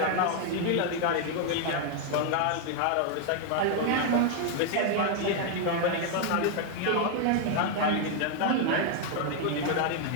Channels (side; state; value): both; different; correlation 0.00